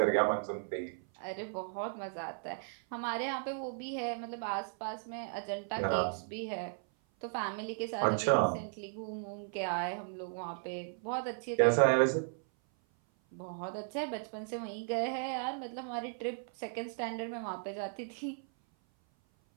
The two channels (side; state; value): left; silent; 54 dB below the other